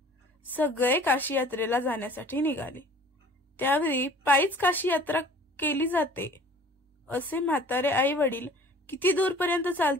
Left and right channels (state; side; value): normal; both; correlation 0.48